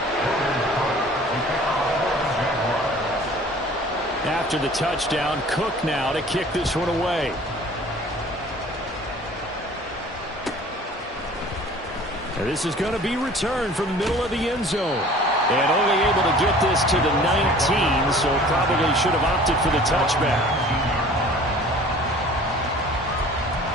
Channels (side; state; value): both; normal; correlation 0.48